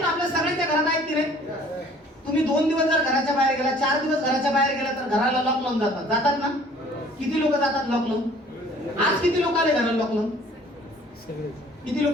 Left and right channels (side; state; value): both; normal; correlation 0.53